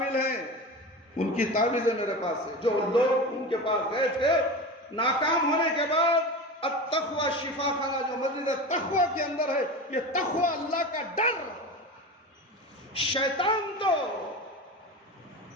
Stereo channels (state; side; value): normal; both; correlation 0.28